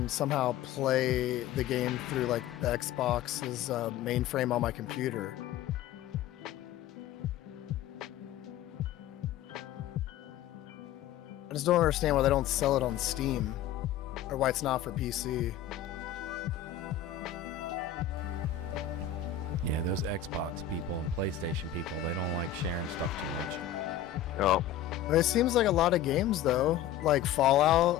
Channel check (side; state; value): right; quieter; 10.2 dB